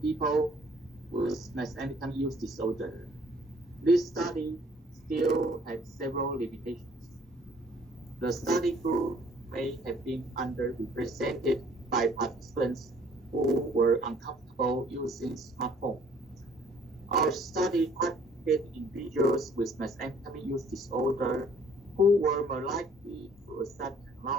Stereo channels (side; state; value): both; normal; correlation 0.58